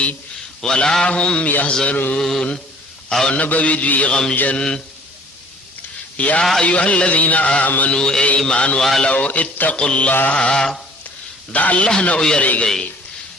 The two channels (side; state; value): both; normal; correlation 0.53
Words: ولا هم يحزنون او نبوي دوی غمجن یا ایها الذين امنوا ایمان والو اتقوا الله دا الله نه ويریږي